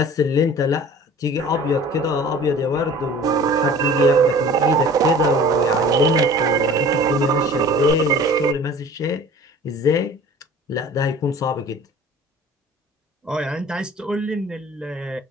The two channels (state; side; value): normal; both; correlation 0.45